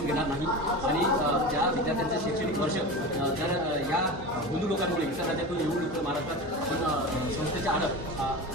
घेणार नाही आणि ज्या विद्यार्थ्यांचं शैक्षणिक वर्ष जर या हिंदू लोकांमुळे इतर राज्यातून येऊन इथं महाराष्ट्रात आपण संस्थेच्या आड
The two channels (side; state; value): right; noise; hum, 18 dB below the sound